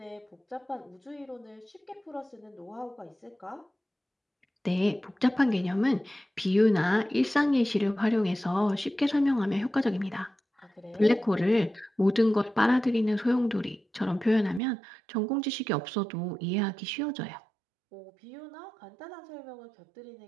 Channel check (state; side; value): drops out; left; at 14.6 s